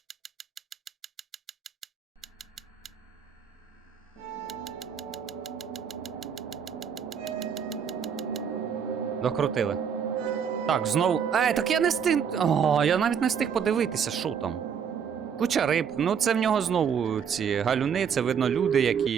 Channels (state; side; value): quieter; left; 7.4 dB